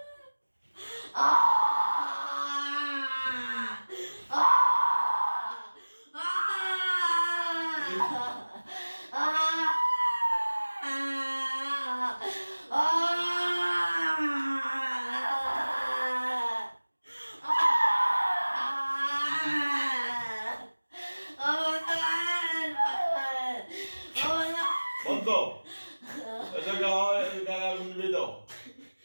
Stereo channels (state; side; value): inverted; both; correlation -1.00